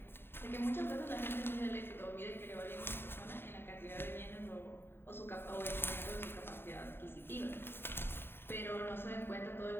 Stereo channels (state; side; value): late; right; 0.11 ms